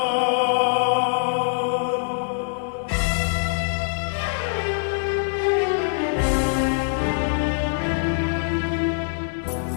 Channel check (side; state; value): right; silent; 63 dB below the other